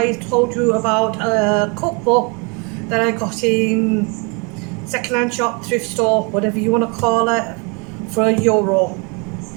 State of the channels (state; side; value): quieter; left; 32.7 dB